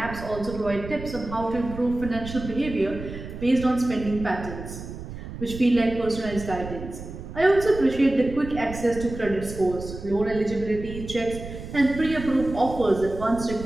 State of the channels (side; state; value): right; noise; rumble, 11 dB below the sound